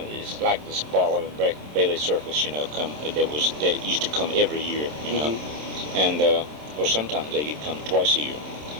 like this Ball and Bailey Circus, that used to come every year, Mm-hmm. And or sometimes they could come twice a year.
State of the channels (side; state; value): left; late; 27 ms